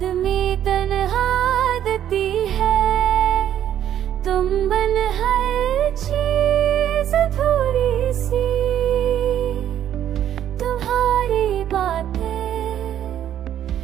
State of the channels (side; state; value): left; quieter; 10.7 dB